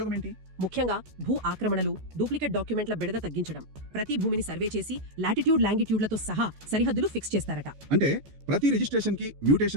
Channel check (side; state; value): left; late; 14 ms